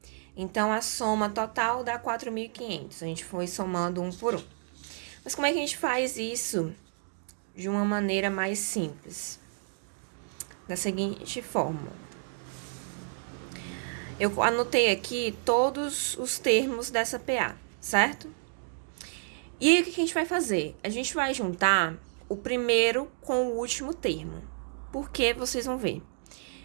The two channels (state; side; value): silent; left; digital silence